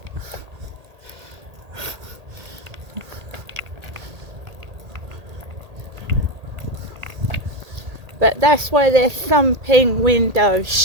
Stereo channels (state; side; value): late; left; 1.8 ms